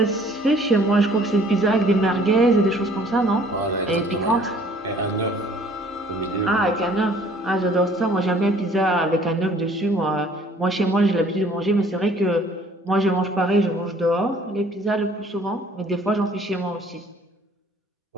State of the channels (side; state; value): both; normal; correlation 0.56